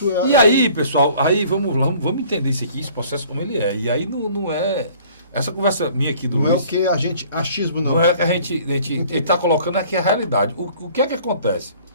é... E aí, pessoal, aí vamos entender isso aqui, esse processo como ele é. E aí não é... Essa conversa minha aqui do Luiz... Não é o que a gente... Achismo não. Não é que a gente está colocando aqui a realidade. O que é que acontece?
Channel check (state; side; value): inverted; both; correlation -0.53